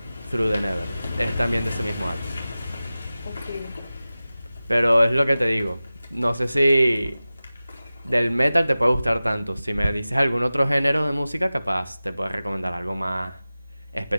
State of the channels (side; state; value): both; inverted; correlation -0.96